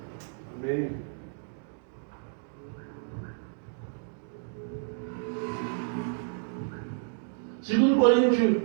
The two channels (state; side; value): silent; left; digital silence